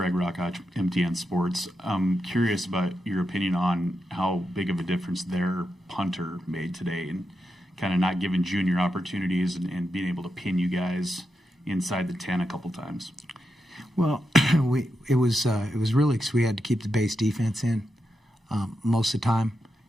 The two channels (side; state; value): both; normal; correlation 0.86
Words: Rockach, MTN Sports. I'm curious about your opinion on how big of a difference their punter made today and kind of not giving junior opportunities and being able to pin you guys inside the 10 a couple times. Well, it was really because we had to keep the base defense in most of the time.